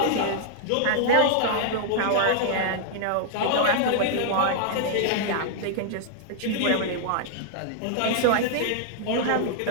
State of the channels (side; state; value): both; different; correlation -0.01